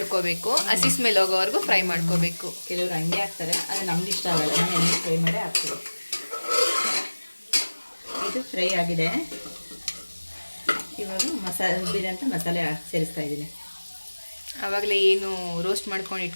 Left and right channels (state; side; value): inverted; both; correlation -1.00